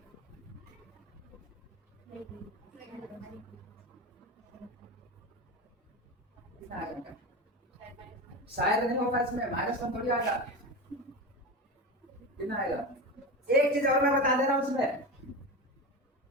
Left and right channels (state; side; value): normal; both; correlation 0.23